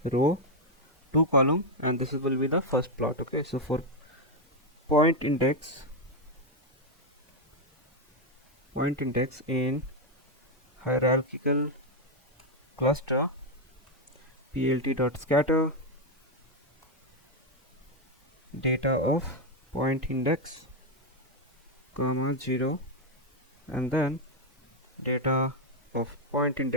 row, two column, and this will be the first plot. Okay, so for point index in hierarchical cluster, plt dot scatter data of point index comma 0, and then data of point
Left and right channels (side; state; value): both; normal; correlation 0.03